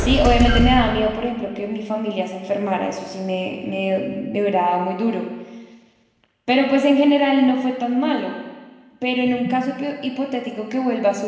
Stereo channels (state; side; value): identical; both; correlation 1.00